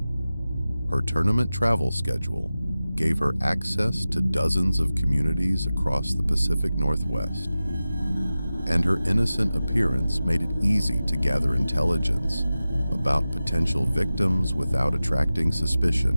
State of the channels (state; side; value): inverted; both; correlation -0.95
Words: Her tournament travel schedule gave her access to dozens of communities across the Pacific Northwest, and her innocent appearance made it easy to gather intelligence about potential victims without attracting